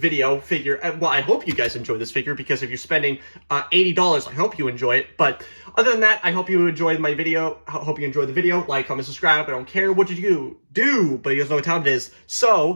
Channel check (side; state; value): both; inverted; correlation -1.00